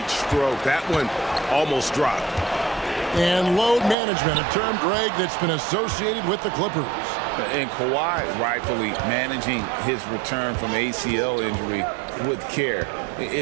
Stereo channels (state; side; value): drops out; left; at 4.0 s